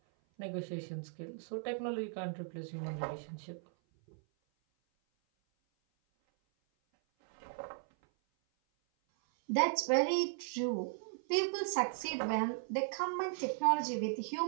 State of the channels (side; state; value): left; silent; 53 dB below the other